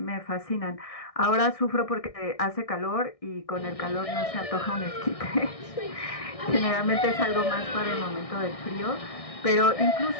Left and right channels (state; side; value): late; right; 1.6 ms